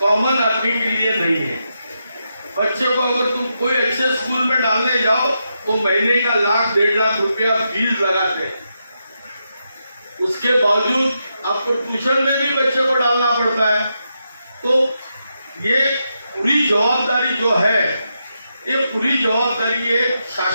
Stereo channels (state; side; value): inverted; both; correlation -0.84